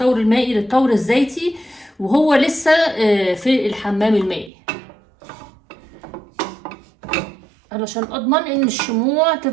المائي للتور الزيتي وهو لسه في الحمام المائي، علشان اضمن ان الشموع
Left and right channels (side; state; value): left; drops out; at 4.5 s